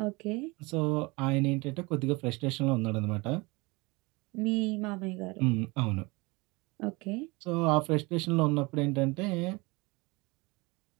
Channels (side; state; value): left; quieter; 25.2 dB